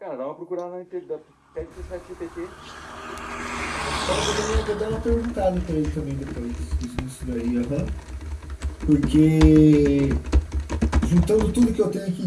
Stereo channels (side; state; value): both; identical; correlation 1.00